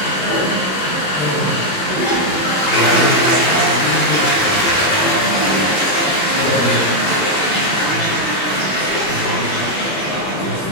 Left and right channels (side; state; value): right; late; 21 ms